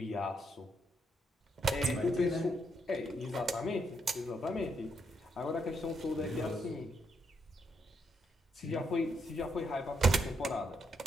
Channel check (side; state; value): both; normal; correlation 0.78